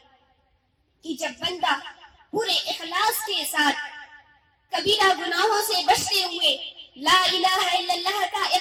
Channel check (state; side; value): identical; both; correlation 1.00